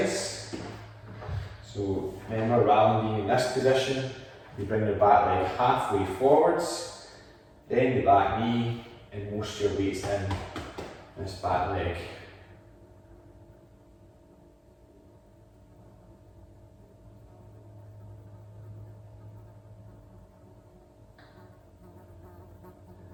So remember, rather than being in this position, you bring the back leg halfway forwards, then the back knee, and most of your weight's in this back leg.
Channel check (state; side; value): identical; both; correlation 1.00